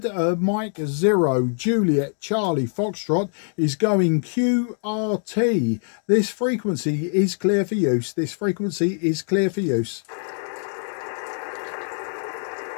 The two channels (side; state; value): right; silent; 63 dB below the other